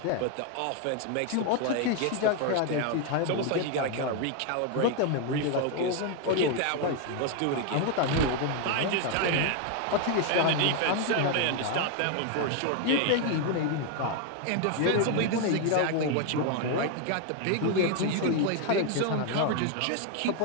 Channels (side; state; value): both; different; correlation 0.01